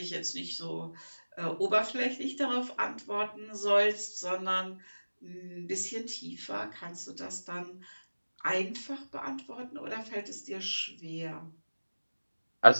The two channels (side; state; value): both; inverted; correlation -1.00